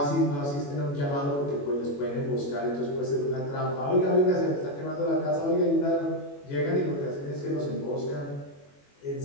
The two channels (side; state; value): right; late; 21 ms